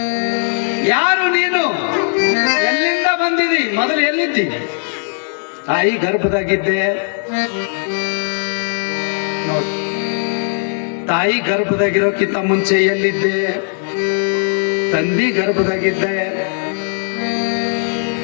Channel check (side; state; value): right; silent; 67 dB below the other